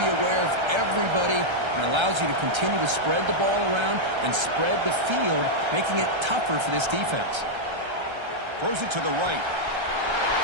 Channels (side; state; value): left; late; 1.3 ms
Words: aware of everybody, and allows you to continue to spread the ball around and spread the field, making it tougher for this defense. Throws it to the right.